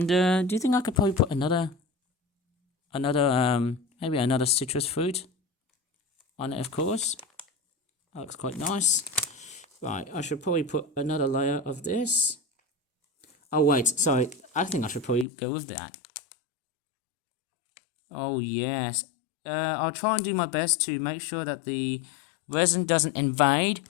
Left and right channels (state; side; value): drops out; right; at 15.2 s